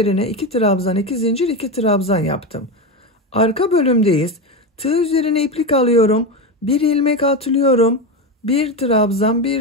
2 trabzan, 2 zincir, 2 trabzan yaptım. Arka bölümdeyiz. Tığ üzerine iplik alıyorum. Bir ilmek atlıyorum. Bir trabzan,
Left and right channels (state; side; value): normal; both; correlation 0.16